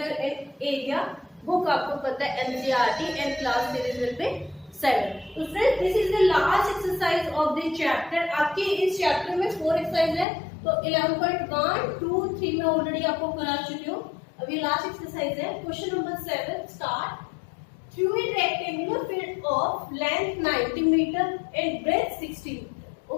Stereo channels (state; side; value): drops out; right; at 10.2 s